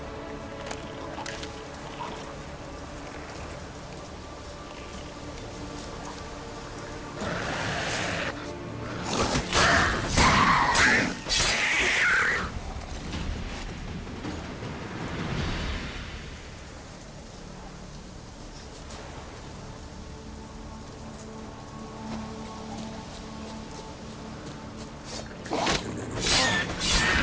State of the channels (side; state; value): both; identical; correlation 1.00